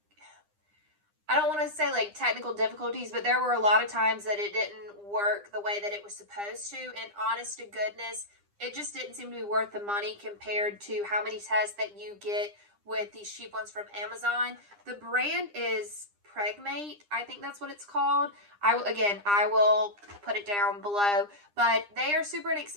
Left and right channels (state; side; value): late; left; 9.9 ms